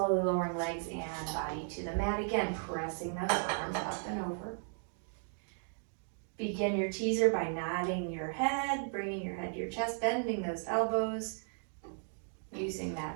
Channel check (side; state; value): left; silent; 54 dB below the other